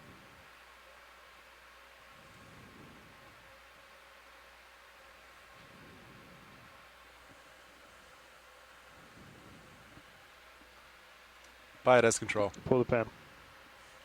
Pilot has control. Pull the pin.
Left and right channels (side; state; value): both; identical; correlation 1.00